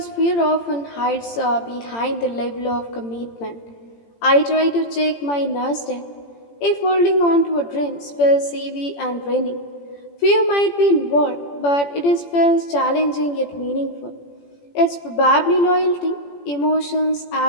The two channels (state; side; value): late; right; 17 ms